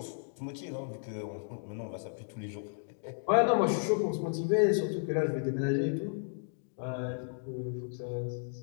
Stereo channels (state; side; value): silent; right; digital silence